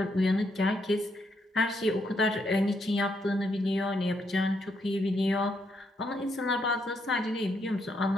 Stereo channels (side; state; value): both; normal; correlation 0.76